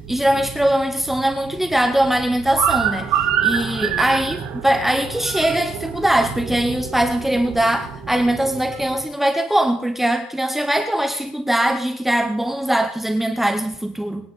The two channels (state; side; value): normal; both; correlation 0.88